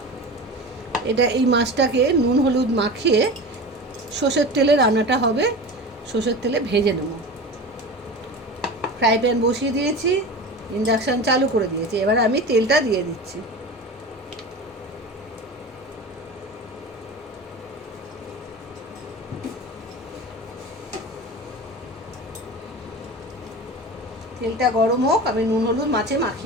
এই মাছটাকে নুন হলুদ মাখিয়ে সর্ষের তেলে রান্নাটা হবে, সর্ষের তেলে ভেজে নেব। ফ্রাই প্যান বসিয়ে দিয়েছি, ইন্ডাকশান চালু করে দিয়েছি। এবার আমি তেলটা দিয়ে দিচ্ছি। তেলটা গরম হোক, আমি নুন হলুদ মাছে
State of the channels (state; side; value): normal; both; correlation 0.31